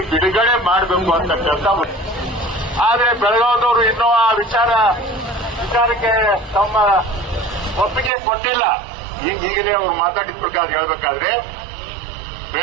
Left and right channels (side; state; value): left; drops out; at 8.1 s